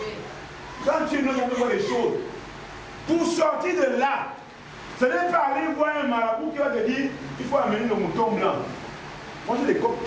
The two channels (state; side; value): identical; both; correlation 1.00